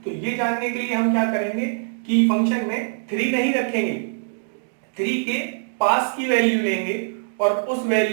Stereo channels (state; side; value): silent; left; digital silence